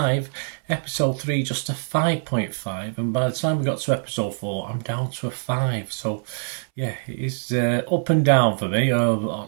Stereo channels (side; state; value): left; silent; 63 dB below the other